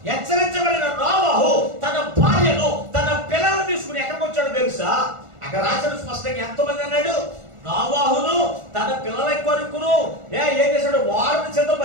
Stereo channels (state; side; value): late; left; 1.4 ms